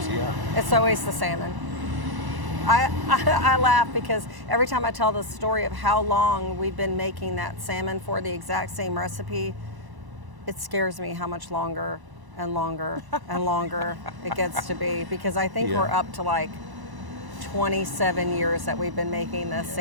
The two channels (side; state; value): left; late; 1.0 ms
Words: it's always the salmon. I laugh because every time I tell the story of how long we've been making that salmon for the exact same recipe, it scares me how much longer and longer and longer it gets to be, because I think we're up to like 27 years that we've been making this